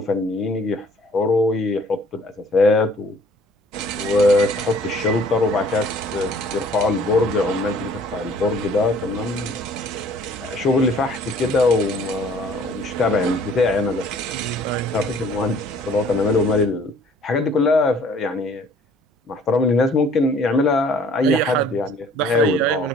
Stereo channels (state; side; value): normal; both; correlation 0.55